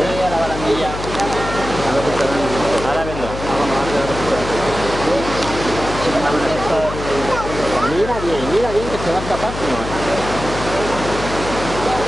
a la barandilla. Ahora vendrá. Mira bien que se va a escapar, si no.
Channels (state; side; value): noise; left; hum, 8 dB below the sound